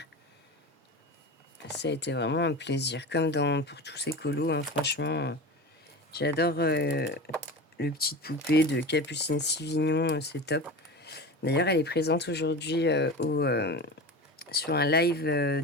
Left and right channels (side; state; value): both; normal; correlation 0.29